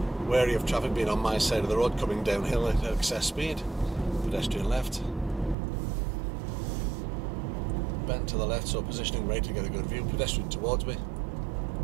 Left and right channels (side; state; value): left; drops out; at 5.6 s